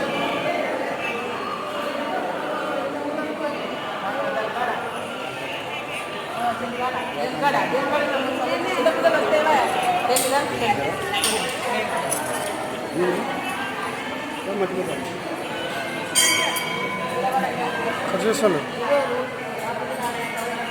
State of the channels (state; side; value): identical; both; correlation 1.00